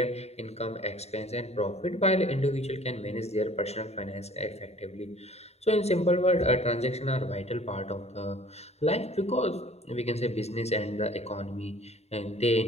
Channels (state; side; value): late; right; 0.31 ms